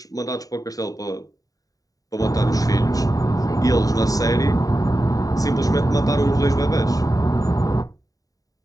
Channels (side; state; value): right; late; 0.17 ms